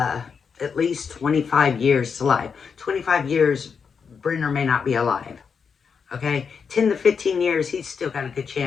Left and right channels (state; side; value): quieter; right; 6.1 dB